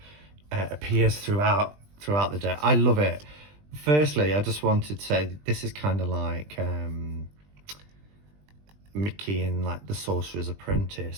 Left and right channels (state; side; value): late; left; 20 ms